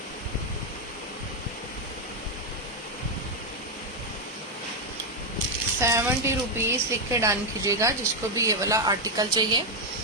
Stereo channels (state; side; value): normal; both; correlation 0.03